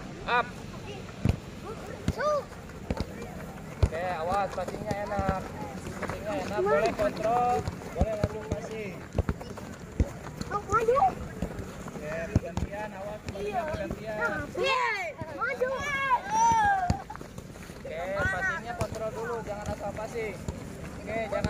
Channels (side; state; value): both; identical; correlation 1.00